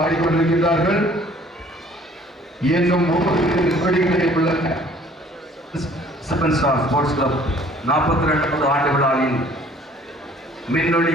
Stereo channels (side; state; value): both; normal; correlation 0.55